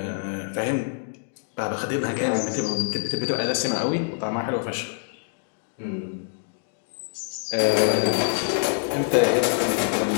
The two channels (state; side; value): silent; right; digital silence